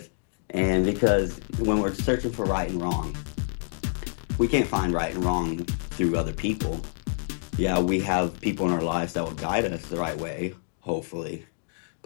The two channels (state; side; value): silent; right; digital silence